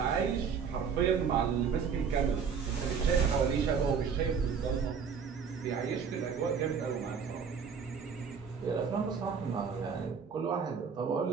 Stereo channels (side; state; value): left; quieter; 6.3 dB